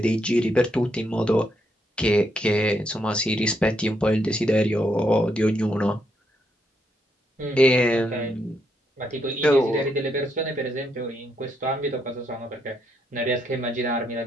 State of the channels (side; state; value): both; normal; correlation 0.77